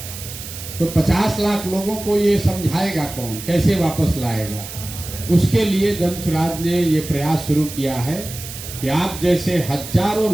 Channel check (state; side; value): noise; right; hiss, 11 dB below the sound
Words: तो 50 लाख लोगों को ये समझाएगा कौन, कैसे वापस लाएगा? उसके लिए जन सुराज ने ये प्रयास शुरू किया है कि आप जैसे हजारों